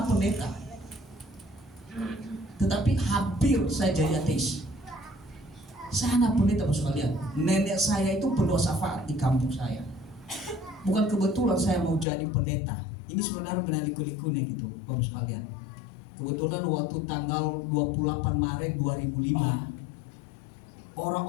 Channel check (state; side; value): drops out; right; at 12.1 s